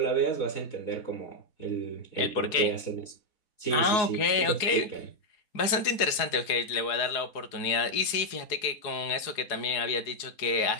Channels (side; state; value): right; late; 4.7 ms